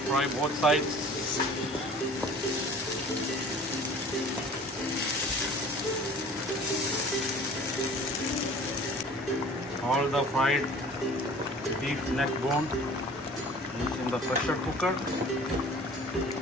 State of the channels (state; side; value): normal; both; correlation 0.46